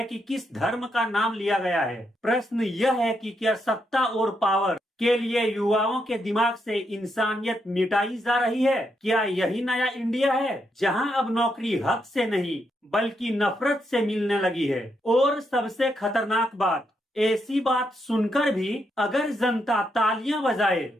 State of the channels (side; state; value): both; normal; correlation 0.80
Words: कि किस धर्म का नाम लिया गया है। प्रश्न यह है कि क्या सत्ता और पावर के लिए युवाओं के दिमाग से इंसानियत मिटाई जा रही है? क्या यही नया इंडिया है जहां अब नौकरी हक से नहीं बल्कि नफरत से मिलने लगी है? और सबसे खतरनाक बात, ऐसी बात सुनकर भी अगर जनता तालियां बजाए